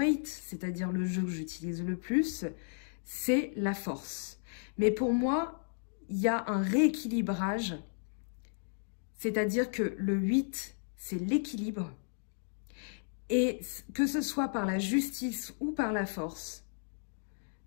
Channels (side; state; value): right; silent; digital silence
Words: c'est-à-dire le jeu que j'utilise le plus, c'est la force. Mais pour moi, il y a un rééquilibrage, c'est-à-dire que le 8, c'est l'équilibre. Et que ce soit par la justice ou par la force,